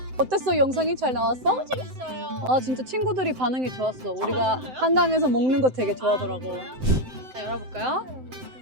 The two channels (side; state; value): left; late; 7.8 ms